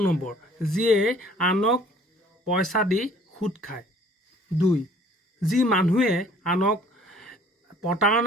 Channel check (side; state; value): both; normal; correlation 0.55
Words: নম্বৰ, যিয়ে আনক পইচা দি সুদ খায়। 2, যি মানুহে আনক